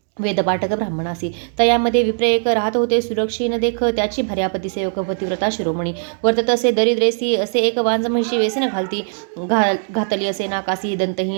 वेदपाठक ब्राह्मणासी. तयामध्ये विप्र एक राहत होते सुरक्षीन देख त्याची भार्यापती सेवक पतिव्रता शिरोमणी. वर्तत असे दरिद्रेसी असे एक वांज म्हशी वेसन घातली असे नाकासी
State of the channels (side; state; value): left; silent; digital silence